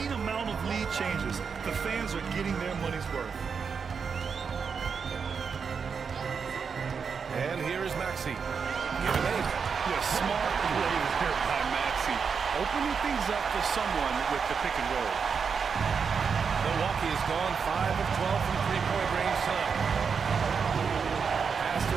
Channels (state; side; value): quieter; left; 6.0 dB